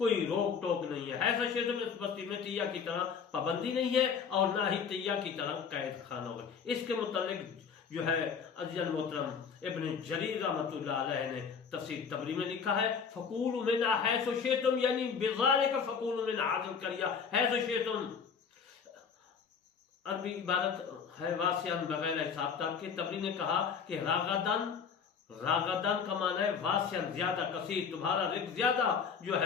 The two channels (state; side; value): quieter; right; 6.4 dB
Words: روک ٹوک نہیں ہے۔ ایسا شیطان میں اس بستی میں تیہ کی طرح پابندی نہیں ہے اور نہ ہی تیہ کی طرح قید خانہ ہوگا۔ اس کے متعلق جو ہے عزیز المحترم ابن جریر رحمۃ اللہ علیہ نے تفسیر تبری میں لکھا ہے فکولوا منہا حیث شئتم، یعنی بذالک فکولوا من هذه القرية حیث شئتم، عربی عبارت ہے واسعاً بغیر حساب تک کے۔ تبری نے کہا کہ راغدن کا معنی ہے واسعاً زیادہ، کثیر، تمہارا رزق زیادہ جو